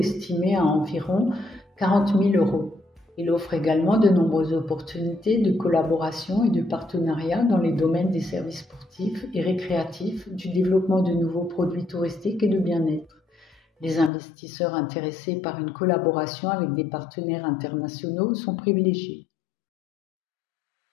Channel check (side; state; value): right; drops out; at 14.1 s